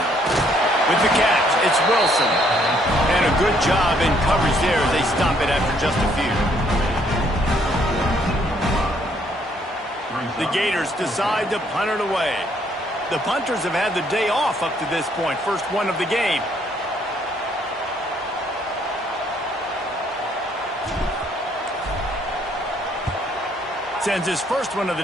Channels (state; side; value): normal; both; correlation 0.67